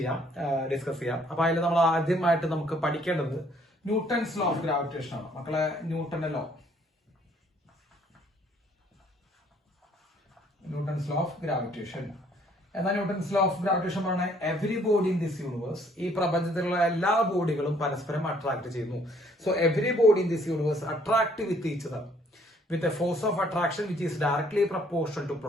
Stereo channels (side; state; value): both; normal; correlation 0.63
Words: ഡിസ്കസ് ചെയ്യാം. അപ്പൊ അതിൽ നമ്മൾ ആദ്യമായിട്ട് നമുക്ക് പഠിക്കേണ്ടത് ന്യൂട്ടൺസ് ലോ ഓഫ് ഗ്രാവിറ്റേഷൻ ആണ്. മക്കളെ, ന്യൂട്ടന്റെ law, Newton's law of gravitation. എന്നാൽ ന്യൂട്ടൺസ് ലോ ഓഫ് ഗ്രാവിറ്റേഷൻ പറഞ്ഞാൽ every body in this universe, ഈ പ്രപഞ്ചത്തിലുള്ള എല്ലാ ബോഡികളും പരസ്പരം അട്രാക്ട് ചെയ്യുന്നു. So every body in this universe attract with each other with a force of attraction which is directly proportional to